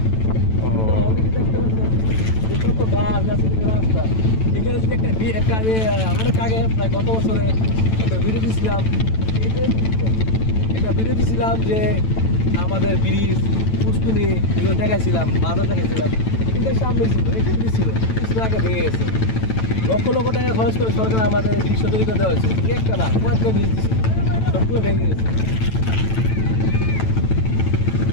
অলরেডি দেখতে পাচ্ছেন যে কত গাছ গাছের রাস্তা। এখানে যদি একটা আমি অনেক আগে প্রায় গত বছরে একটা ভিডিও দিয়েছিলাম, একটা ভিডিও দিয়েছিলাম যে আমাদের ব্রিজ পুষ্কুনি এগুলো দেখাইছিলাম, বাজার দেখাইছিলাম। কিন্তু সামনে ছিল, এটা ব্রিজ ছিল, কিছুদিন আগে ভেঙে গেছে। লক্ষ লক্ষ টাকা খরচ করে সরকার আমাদের ব্রিজ তৈরি করে দেওয়া হয়েছিল, একটা না কয়েকটা ব্রিজ দিচ্ছে, সবগুলো ভেঙে গেছে।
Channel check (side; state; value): right; late; 9.0 ms